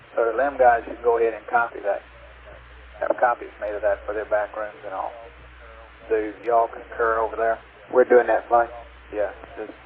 So the LIM guys should go ahead and copy that. Have copies made of that for their back rooms and all. Do y'all concur over there? We're doing that fine. Yeah.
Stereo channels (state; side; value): identical; both; correlation 1.00